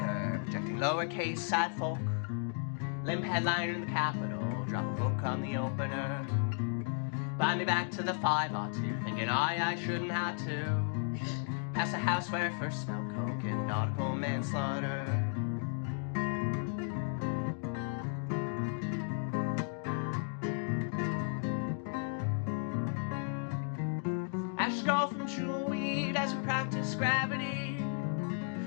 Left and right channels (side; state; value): right; silent; 55 dB below the other